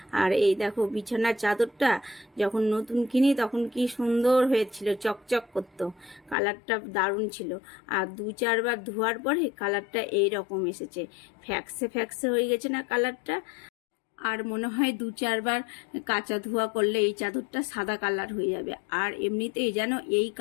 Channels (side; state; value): right; drops out; at 6.4 s